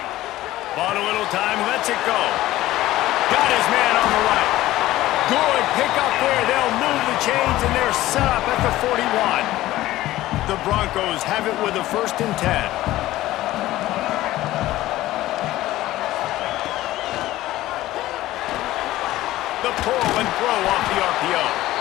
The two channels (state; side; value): quieter; right; 15.9 dB